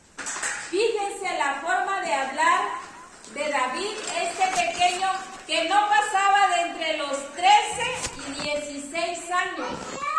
Fíjense la forma de hablar de David, este pequeño que no pasaba de entre los 13 y 16 años.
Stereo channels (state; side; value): identical; both; correlation 1.00